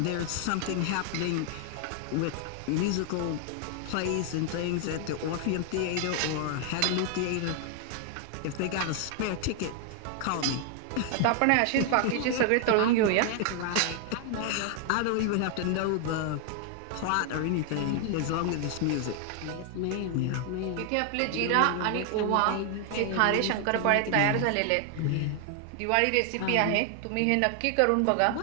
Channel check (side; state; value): both; different; correlation 0.00